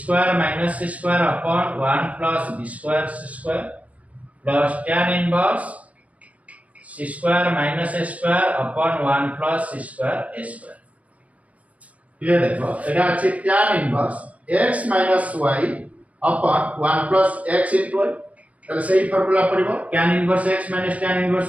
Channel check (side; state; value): left; late; 0.067 ms